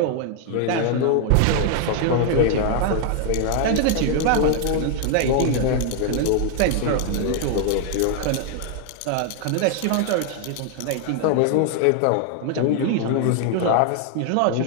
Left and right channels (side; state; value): both; different; correlation 0.00